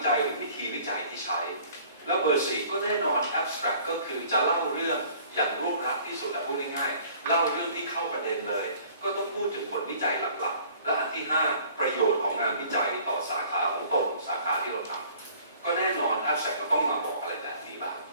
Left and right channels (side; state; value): both; inverted; correlation -0.52